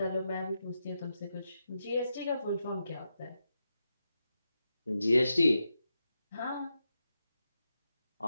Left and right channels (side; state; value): both; inverted; correlation -0.87